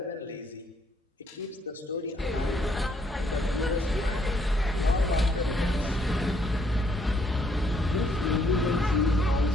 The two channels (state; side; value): normal; both; correlation 0.70